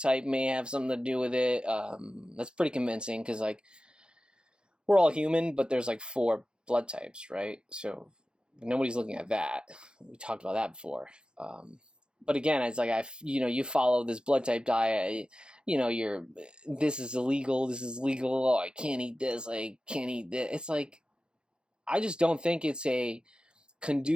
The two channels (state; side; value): late; left; 0.050 ms